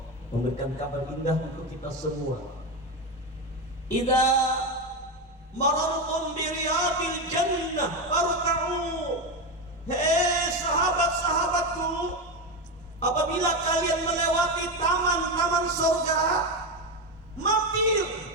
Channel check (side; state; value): both; normal; correlation 0.14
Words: memberikan kabar indah untuk kita semua. Idza marartum bi riyadil jannah farka'u. Hei sahabat-sahabatku, apabila kalian melewati taman-taman surga, mampir,